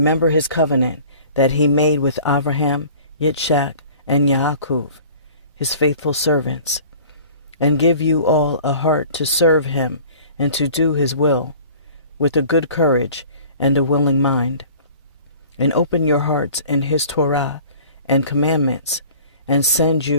his covenant that he made with Abraham, Yitzchak, and Yaakov, his faithful servants, and give you all a heart to serve him and to do his will, with a good courage and a willing mind, and open your hearts in his Torah and commandments, and send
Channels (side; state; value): both; inverted; correlation -0.47